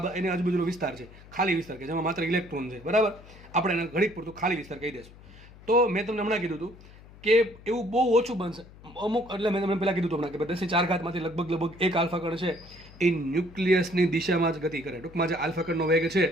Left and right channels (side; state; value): left; noise; hum, 21 dB below the sound